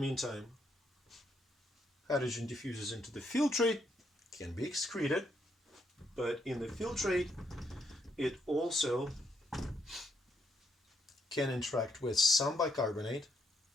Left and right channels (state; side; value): normal; both; correlation 0.76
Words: hydrogen diffuses into the filtrate, can be excreted, but in the filtrate it also can interact with some bicarbonate